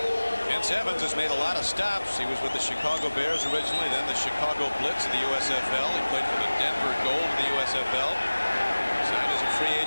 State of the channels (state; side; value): inverted; both; correlation -1.00